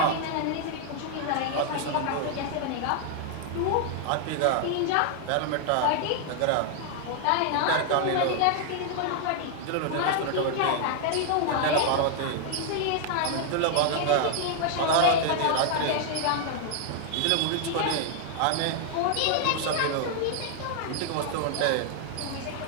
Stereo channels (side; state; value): both; different; correlation 0.00